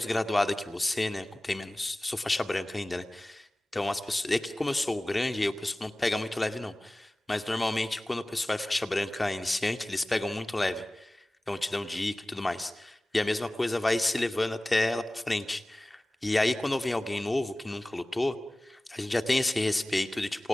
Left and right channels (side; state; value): both; normal; correlation 0.98